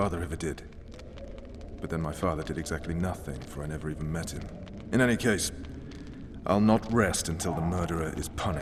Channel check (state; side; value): identical; both; correlation 1.00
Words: ever did. But then my father did exactly nothing, for I never even met him. In any case, I'll not rest until the murderer is